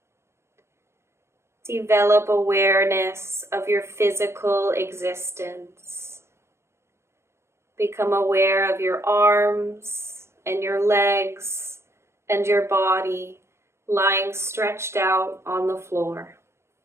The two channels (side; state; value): left; late; 0.13 ms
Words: Develop awareness of your physical existence. Become aware of your arms and your legs and your body lying stretched out on the floor.